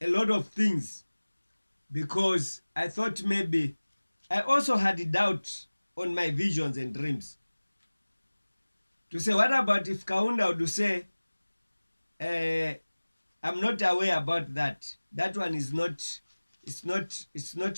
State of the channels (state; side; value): inverted; both; correlation -1.00